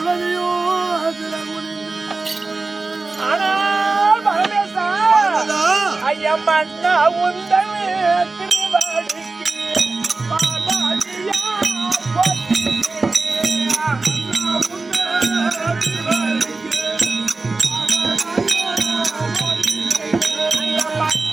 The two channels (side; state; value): left; quieter; 3.6 dB